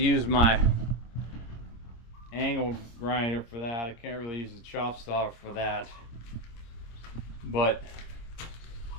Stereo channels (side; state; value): right; late; 26 ms